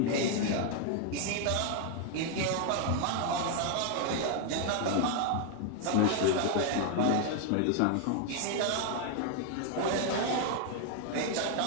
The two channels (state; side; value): different; both; correlation 0.00